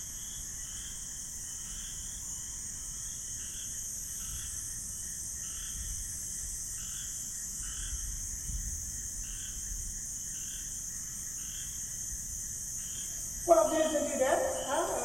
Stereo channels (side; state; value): right; noise; rumble, 12 dB below the sound